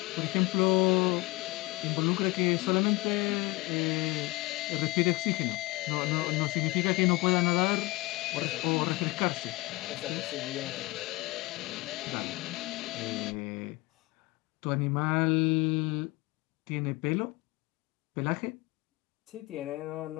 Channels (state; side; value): quieter; right; 22.4 dB